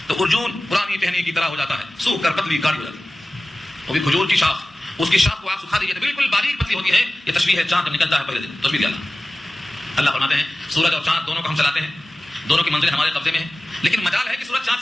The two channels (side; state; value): both; normal; correlation 0.97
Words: تو ارجون پرانی ٹہنی کی طرح ہو جاتا ہے، سوکھ کر پتلی گاڑی ہو جاتی ہے. وہ بھی کھجور کی شاخ، اس کی شاخ کو آپ سکھا دیجیے تو بالکل باریک پتلی ہوتی ہے. یہ تشبیہ ہے چاند نکلتا ہے پہلے دن، تشبیہ دیا اللہ فرماتے ہیں سورج اور چاند دونوں کو ہم چلاتے ہیں، دونوں کی منزل ہمارے قبضے میں ہے، لیکن مجال ہے کہ سورج چاند